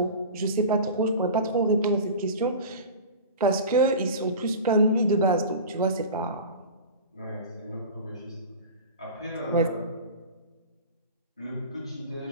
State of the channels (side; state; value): both; inverted; correlation -0.34